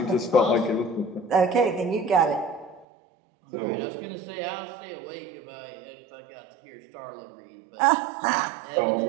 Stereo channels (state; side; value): drops out; left; at 2.9 s